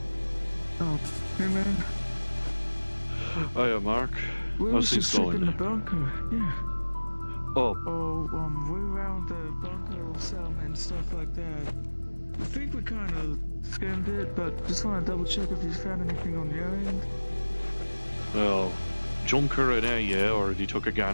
Oh, hey man. Hiya, Mark. We How's was things just going in the there? bunker, yeah. Oh, We around the bunker settlement and stuff like that. I think we kind of skimmed it, but just want to double check if you found anything on your end. well, Junker and I already took a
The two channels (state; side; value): inverted; both; correlation -1.00